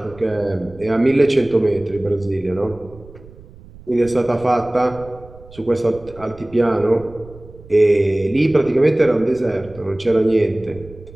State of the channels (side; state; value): right; noise; rumble, 20 dB below the sound